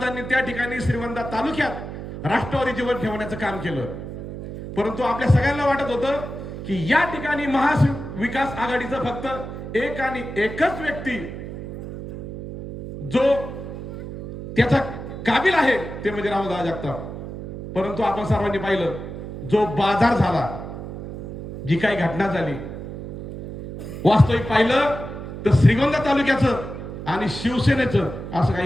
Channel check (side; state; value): right; noise; hum, 9 dB below the sound